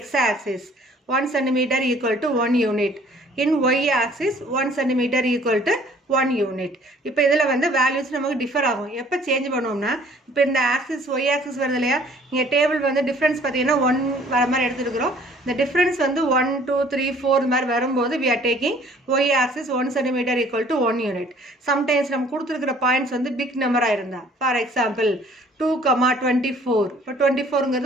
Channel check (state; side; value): normal; both; correlation 0.56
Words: X axis 1 centimeter equal to 1 unit. In Y axis 1 centimeter equal to 1 unit. இப்போ இதில் வந்து வேல்யூஸ் நமக்கு டிஃபர் ஆகும். எப்போ சேஞ்ச் பண்ணுவோம்னா, இப்போ இந்த ஆக்சிஸ் Y ஆக்சிஸ் வருது இல்லையா, இங்கே டேபிள் வந்து டிஃப்ரென்ஸ் பார்த்தீங்கன்னா 1 வர மாதிரி எடுத்துருக்கிறோம். இந்த டிஃப்ரென்ஸ் வந்து 1 2 3 4 இந்த மாதிரி வரும்போது we are taking Y axis 1 centimeter equal to 1 unit. Sometimes நம்ம கொடுத்துருக்கிற பாயிண்ட்ஸ் வந்து பிக் நம்பராக இருந்தால், ஃபார் எக்ஸாம்பிள் 2,24. இப்போ